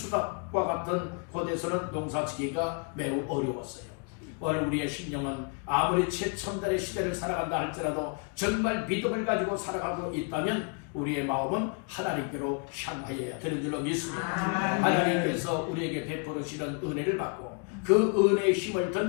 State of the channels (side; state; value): right; quieter; 37.7 dB